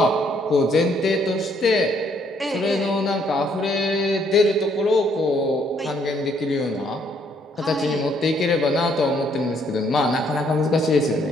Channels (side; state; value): both; normal; correlation 0.68